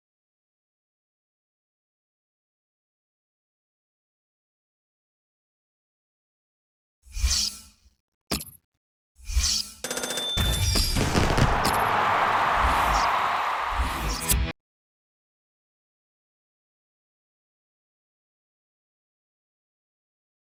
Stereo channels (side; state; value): both; identical; correlation 1.00